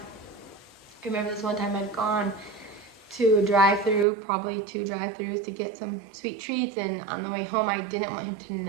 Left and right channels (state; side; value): drops out; left; at 4.0 s